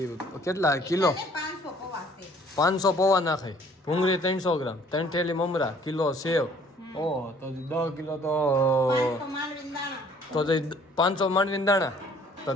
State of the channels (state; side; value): normal; both; correlation 0.57